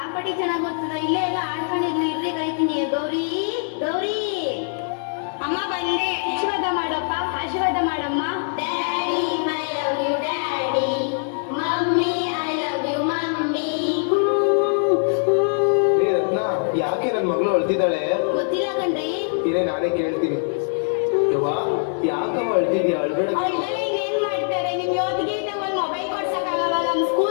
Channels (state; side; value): silent; right; 55 dB below the other